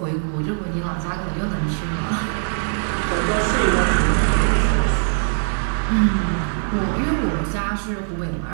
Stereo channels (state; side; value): silent; left; digital silence